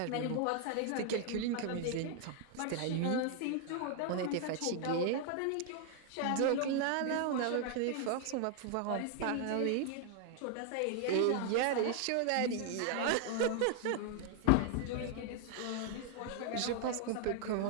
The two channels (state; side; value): different; both; correlation 0.00